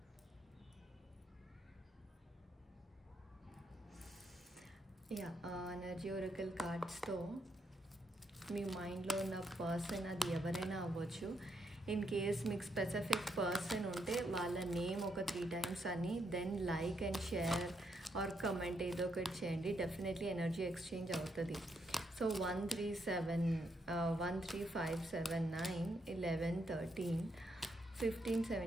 ఎనర్జీ ఒరకల్ కార్డ్స్తో మీ మైండ్లో ఉన్న పర్సన్ అది ఎవరైనా అవ్వచ్చు. ఇన్ కేస్ మీకు స్పెసిఫిక్ పర్సన్ ఉంటే వాళ్ళ నేమ్ ఒక 3 times అని, then like and share or comment ఏదో ఒకటి చేయండి, డెఫినెట్లీ ఎనర్జీ ఎక్స్చేంజ్ అవుతుంది. సో 1 3 5 7 9 11 13 15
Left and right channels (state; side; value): normal; both; correlation 0.78